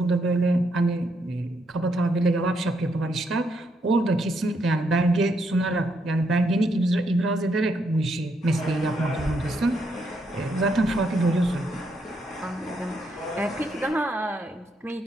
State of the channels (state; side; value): normal; both; correlation 0.77